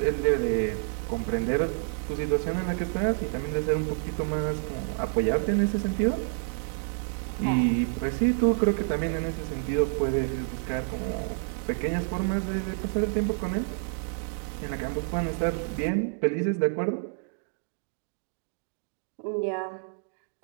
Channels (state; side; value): silent; left; digital silence